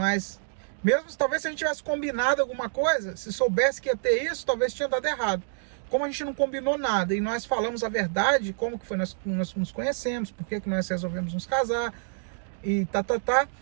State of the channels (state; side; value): silent; left; digital silence